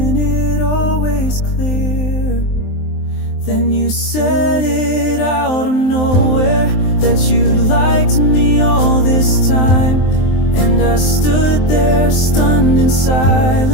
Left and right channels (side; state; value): right; late; 23 ms